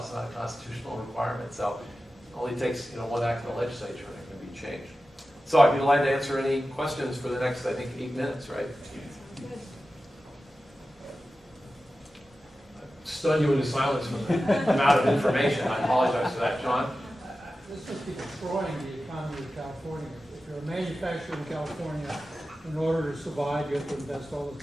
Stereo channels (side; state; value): both; normal; correlation 0.94